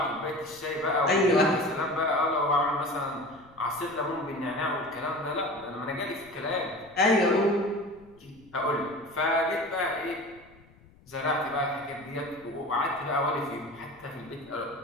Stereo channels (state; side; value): noise; left; rumble, 26 dB below the sound